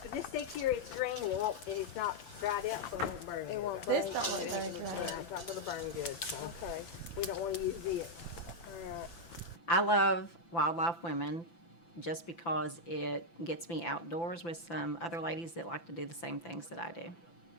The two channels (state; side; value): late; right; 5.9 ms